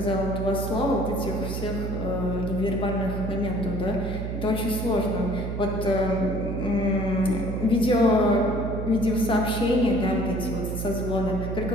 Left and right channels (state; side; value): noise; right; hum, 4 dB below the sound